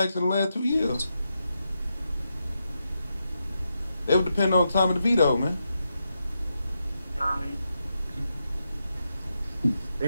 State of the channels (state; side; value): inverted; both; correlation -0.85